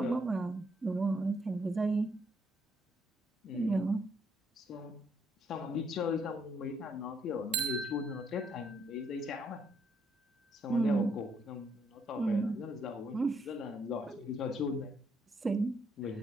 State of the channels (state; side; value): normal; both; correlation 0.72